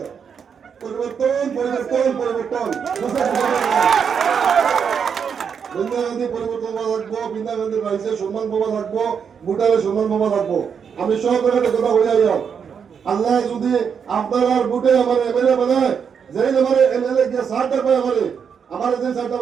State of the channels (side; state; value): left; quieter; 6.9 dB